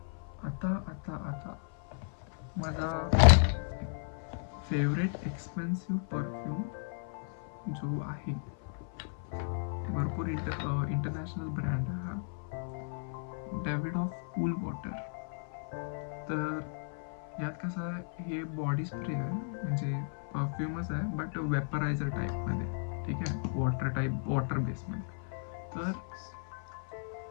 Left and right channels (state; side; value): silent; right; 55 dB below the other